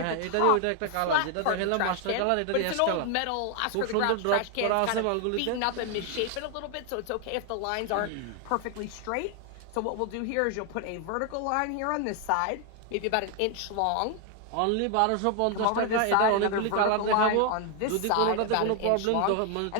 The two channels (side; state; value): both; different; correlation 0.01